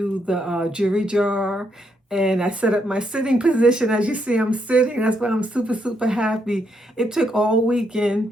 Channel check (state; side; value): normal; both; correlation 0.77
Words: the jewelry jar. And I set up my sitting position. As you see, I'm sitting. That's why I'm super, super happy. It took all weekend.